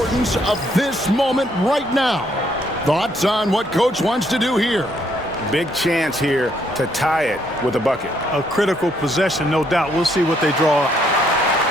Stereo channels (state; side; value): normal; both; correlation 0.71